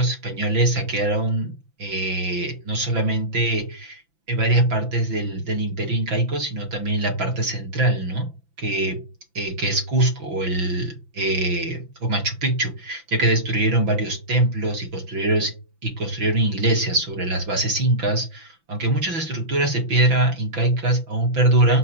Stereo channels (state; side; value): late; left; 5.9 ms